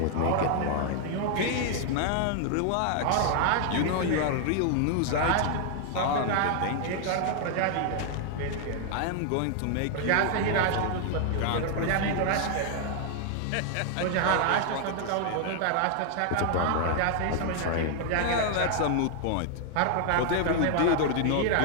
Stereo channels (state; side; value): different; both; correlation 0.00